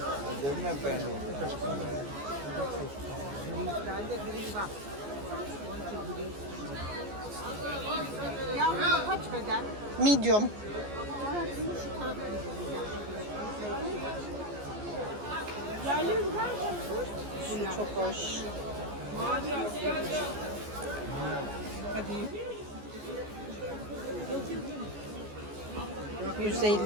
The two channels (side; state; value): left; late; 14 ms